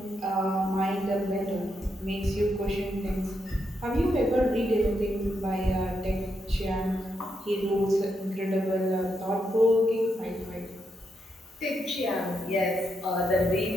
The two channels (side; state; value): both; normal; correlation 0.82